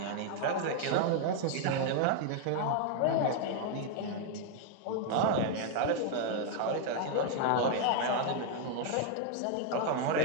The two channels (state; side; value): different; both; correlation 0.00